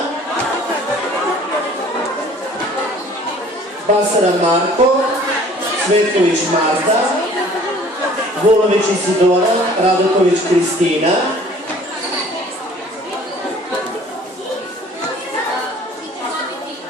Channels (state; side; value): normal; both; correlation 0.52